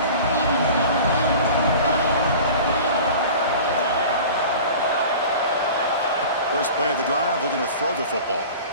First play of the drive, looking to throw the football.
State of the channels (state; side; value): inverted; both; correlation -0.39